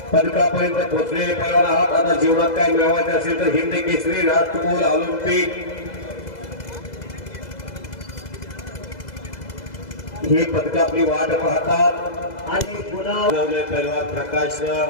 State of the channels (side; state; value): right; late; 2.0 ms